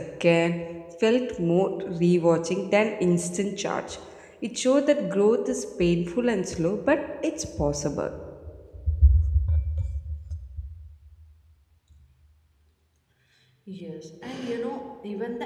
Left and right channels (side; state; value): both; identical; correlation 1.00